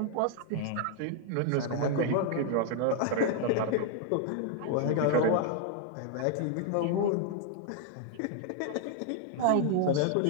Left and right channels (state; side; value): different; both; correlation 0.00